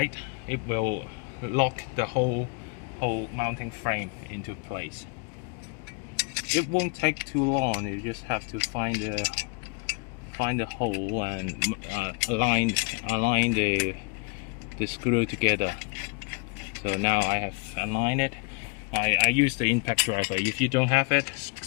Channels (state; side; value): quieter; right; 32.5 dB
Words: it will lock the whole mounting frame into place. It won't take too long. You just have to find the hole and align the screw together. So now I have aligned it. I use the impact driver. If you don't have it,